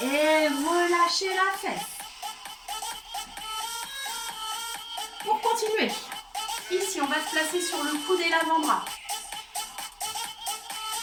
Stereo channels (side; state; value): both; identical; correlation 1.00